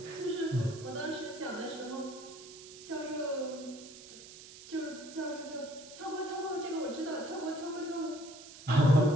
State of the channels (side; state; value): right; noise; hiss, 16 dB below the sound